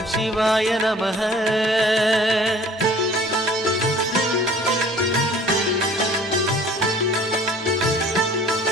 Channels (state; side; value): normal; both; correlation 0.51